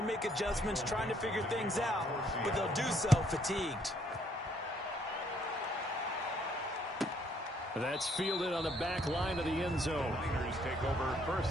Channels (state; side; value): normal; both; correlation 0.67